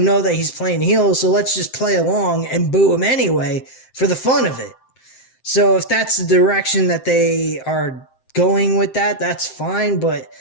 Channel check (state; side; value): late; right; 7.7 ms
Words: that he's playing heel, so let's just play along and boo him anyway for the fun of it. So if that's the direction that they are going with that, that's fine, but